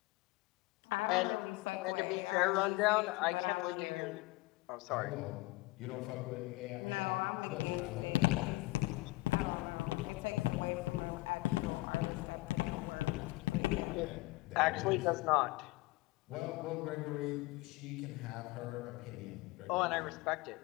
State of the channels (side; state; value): right; quieter; 21.6 dB